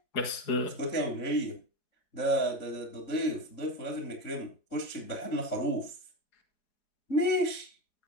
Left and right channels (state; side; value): late; right; 3.7 ms